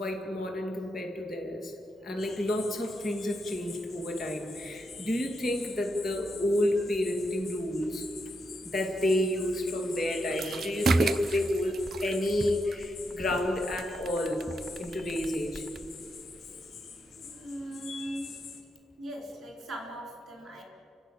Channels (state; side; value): normal; both; correlation 0.83